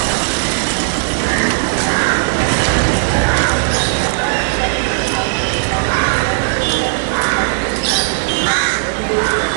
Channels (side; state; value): left; silent; digital silence